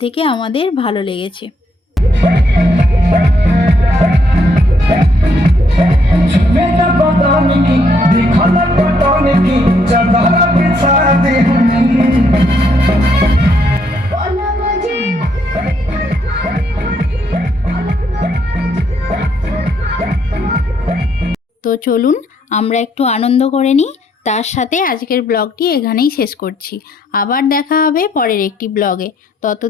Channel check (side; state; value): both; normal; correlation 0.72